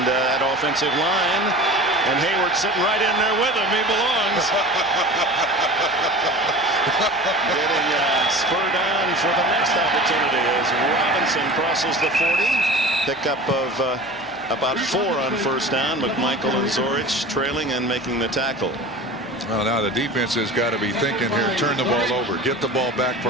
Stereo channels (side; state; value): both; normal; correlation 0.37